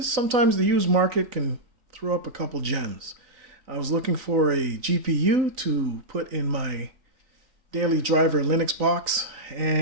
sometimes the used market can throw up a couple gems. I was looking for a GPU to put in my daily driver Linux box,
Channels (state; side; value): late; left; 3.9 ms